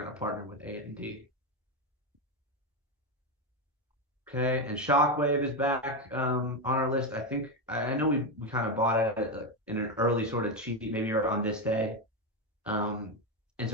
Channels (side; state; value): both; normal; correlation 0.10